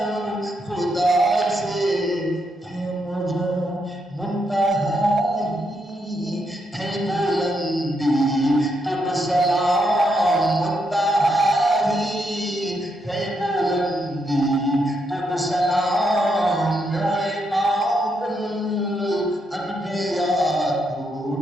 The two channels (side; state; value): both; normal; correlation 0.79